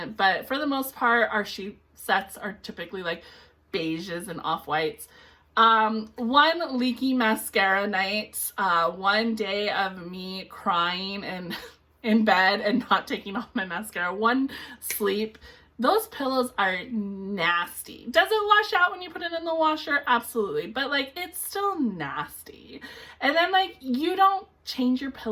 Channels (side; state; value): both; identical; correlation 1.00